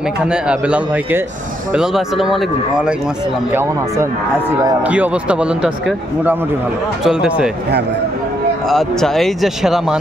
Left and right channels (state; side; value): normal; both; correlation 0.75